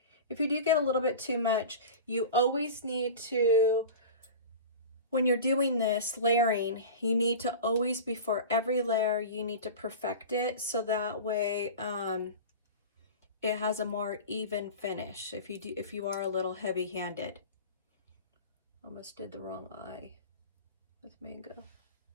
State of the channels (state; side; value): inverted; both; correlation -0.33